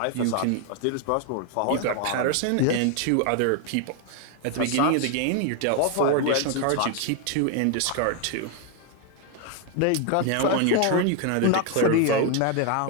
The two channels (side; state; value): both; different; correlation 0.01